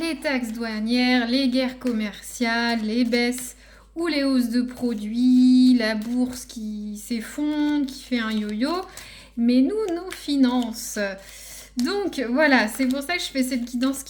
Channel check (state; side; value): identical; both; correlation 1.00